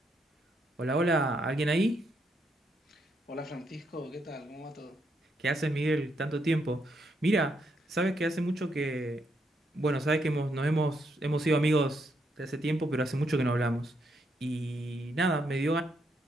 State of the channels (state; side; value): normal; both; correlation 0.77